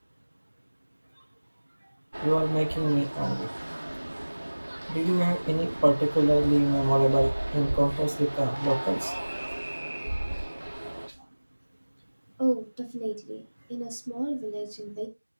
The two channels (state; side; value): inverted; both; correlation -1.00